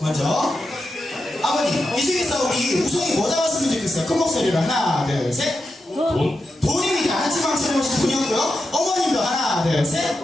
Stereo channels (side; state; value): both; normal; correlation 0.88